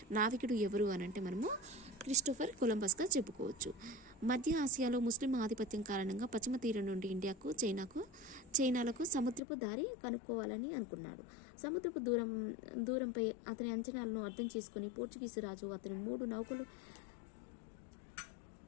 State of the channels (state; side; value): drops out; right; at 9.4 s